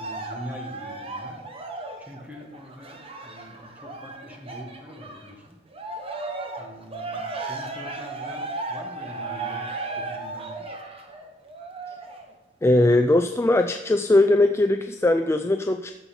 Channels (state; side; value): normal; both; correlation 0.74